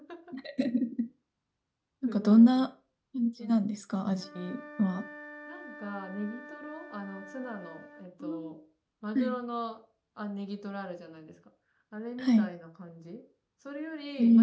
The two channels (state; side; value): identical; both; correlation 1.00